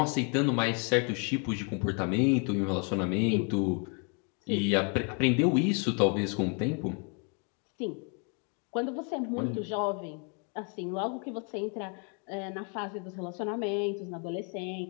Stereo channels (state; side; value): quieter; right; 38.4 dB